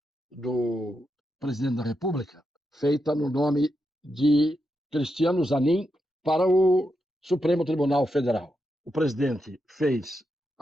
do presidente da República, feita no nome de Cristiano Zanin, para o Supremo Tribunal Federal. O presidente fez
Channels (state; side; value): normal; both; correlation 0.85